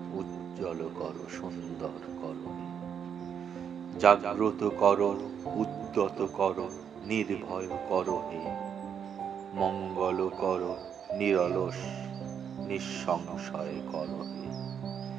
উজ্জ্বল কর, সুন্দর কর হে। জাগ্রত কর, উদ্যত কর, নির্ভয় কর হে। মঙ্গল কর, নিরলস নিঃসংশয় কর হে।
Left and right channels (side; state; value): left; quieter; 7.9 dB